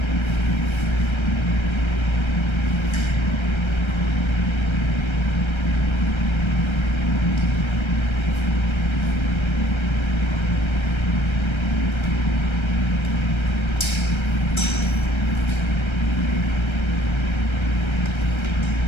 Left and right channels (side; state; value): right; late; 1.3 ms